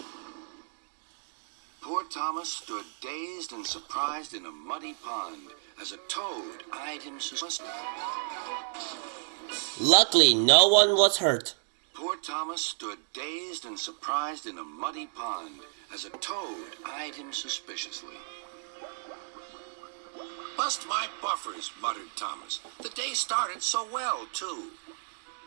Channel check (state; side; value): silent; left; digital silence